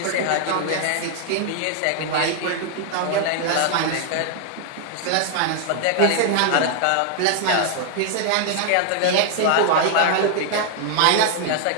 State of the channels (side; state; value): both; different; correlation 0.00